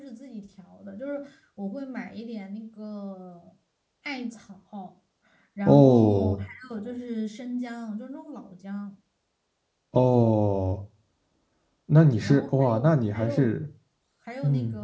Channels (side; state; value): both; identical; correlation 1.00